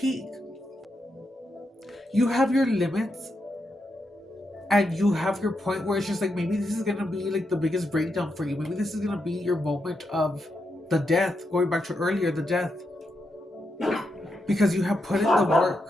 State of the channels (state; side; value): normal; both; correlation 0.84